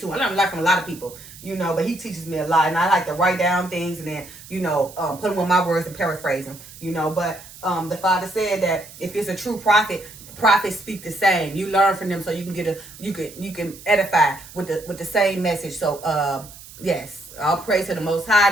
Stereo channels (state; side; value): noise; right; hiss, 18 dB below the sound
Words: I learn a lot from a lot of people, but he teaches me a lot, and I like to write down things and then put them in my words and paraphrase them. But the Father said that if it's a true prophet, prophets speak the same. You learn from them, so you can you can edify with the same message. So yes, all praise to the Most High,